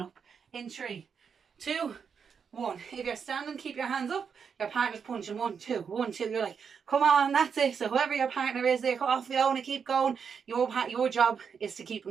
In 3, 2, 1. If you're standing, keep your hands up. Your partner's punching 1, 2, 1, 2. You're like, come on, that's it. So whoever your partner is, they're off going to keep going. Your job is to keep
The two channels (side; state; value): left; quieter; 6.5 dB